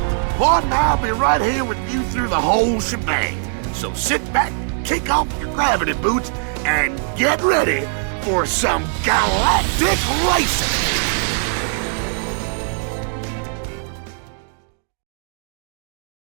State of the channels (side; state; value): left; silent; 57 dB below the other